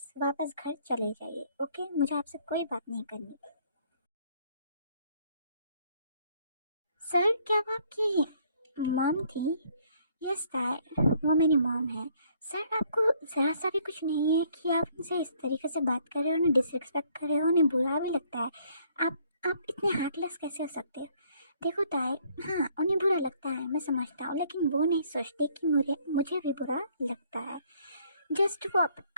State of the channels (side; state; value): both; inverted; correlation -0.64